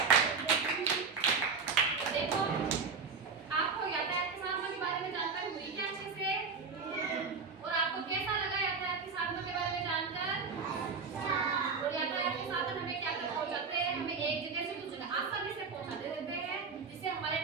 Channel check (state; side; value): quieter; left; 5.1 dB